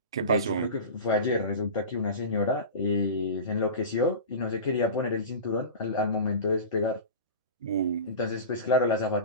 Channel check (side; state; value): both; inverted; correlation -0.30